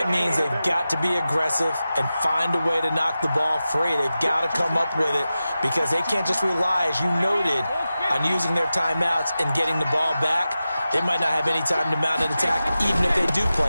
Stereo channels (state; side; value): inverted; both; correlation -0.93